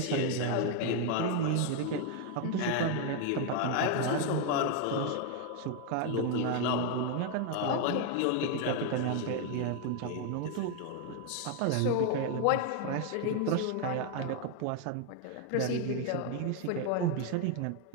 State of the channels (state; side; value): different; both; correlation 0.01